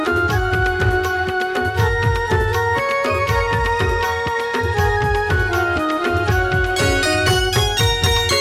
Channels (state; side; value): identical; both; correlation 1.00